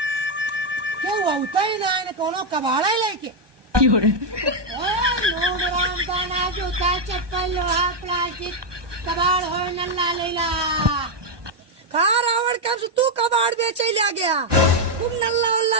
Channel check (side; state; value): left; late; 1.2 ms